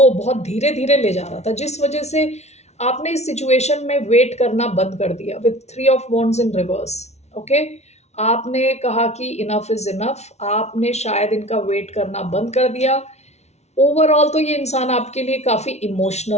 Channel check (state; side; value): late; right; 0.32 ms